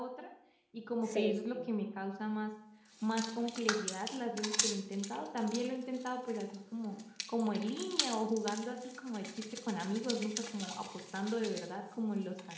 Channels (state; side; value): identical; both; correlation 1.00